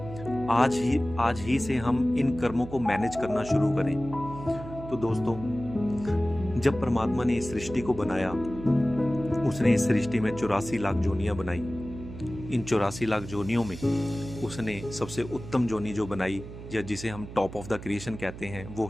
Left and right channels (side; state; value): right; noise; hum, 12 dB below the sound